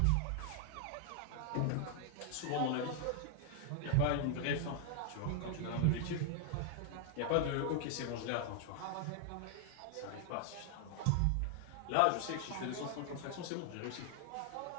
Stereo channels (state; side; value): different; both; correlation 0.00